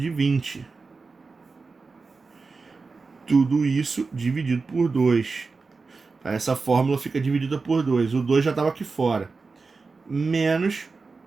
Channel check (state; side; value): quieter; left; 4.3 dB